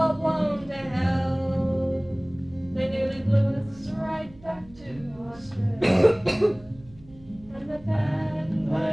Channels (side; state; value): right; noise; hum, 23 dB below the sound